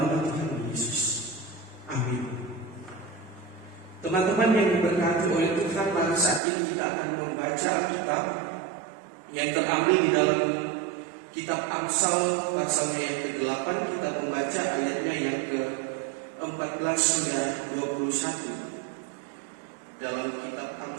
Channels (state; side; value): drops out; left; at 6.4 s